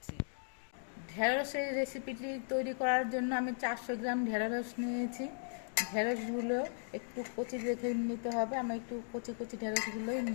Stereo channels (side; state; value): right; silent; digital silence